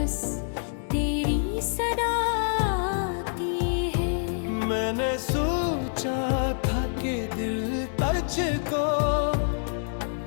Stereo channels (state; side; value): silent; right; digital silence